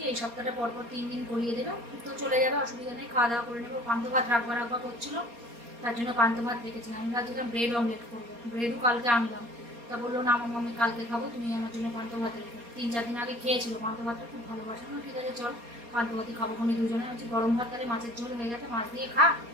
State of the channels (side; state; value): left; late; 4.2 ms